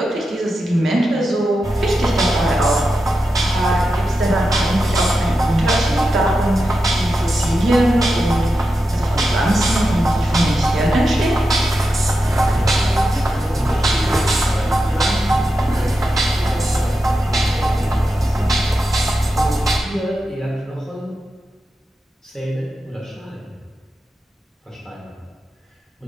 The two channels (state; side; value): normal; both; correlation 0.89